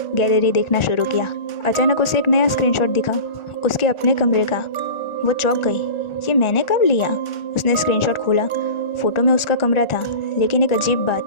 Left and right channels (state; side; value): late; right; 1.4 ms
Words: गैलरी देखना शुरू किया। अचानक उसे एक नया स्क्रीनशॉट दिखा, उसके अपने कमरे का। वो चौंक गई, ये मैंने कब लिया? उसने स्क्रीनशॉट खोला। फ़ोटो में उसका कमरा था, लेकिन एक अजीब बात,